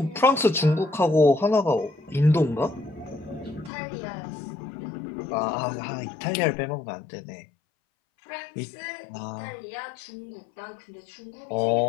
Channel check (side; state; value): right; drops out; at 3.7 s